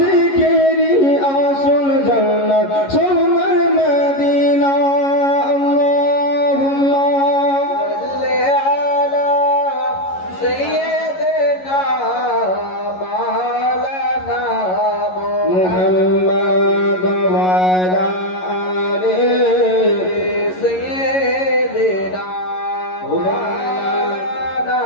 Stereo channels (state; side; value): late; right; 11 ms